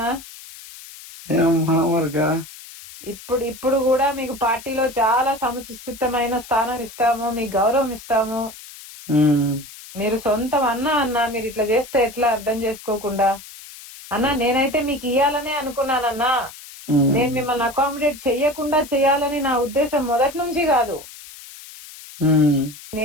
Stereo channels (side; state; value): left; noise; hiss, 17 dB below the sound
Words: ఏమమ్మా మరికా? ఇప్పుడు కూడా మీకు పార్టీలో చాలా సముచితమైన స్థానం ఇస్తాము, మీకు గౌరవం ఇస్తాము. మీరు సొంతం అన్న మీరు ఇట్లా చేస్తే ఎట్లా అర్థం చేసుకోకుండా? అన్నా నేనైతే మీకు ఇయ్యాలనే అనుకున్నానన్నా. నేను మిమ్మల్ని అకామిడేట్ చెయ్యకుండా చెయ్యాలని నా ఉద్దేశం మొదటి నుంచి కాదు.